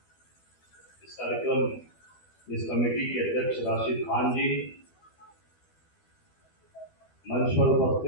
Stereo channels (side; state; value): right; late; 12 ms